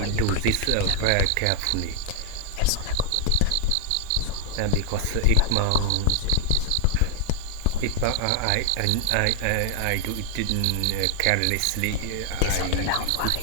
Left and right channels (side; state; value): both; different; correlation 0.00